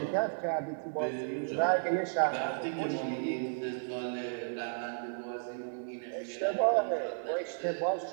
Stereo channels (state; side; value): silent; left; digital silence